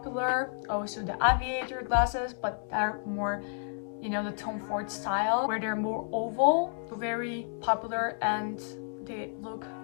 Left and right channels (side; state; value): right; silent; 57 dB below the other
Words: also the aviator glasses, but they're more, you know, the Tom Ford style, where they're more oval, very popular, and they look